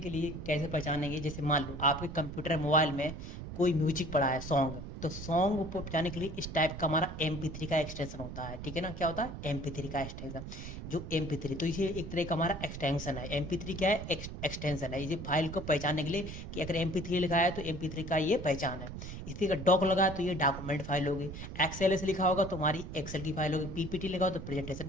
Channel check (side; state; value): right; noise; rumble, 9 dB below the sound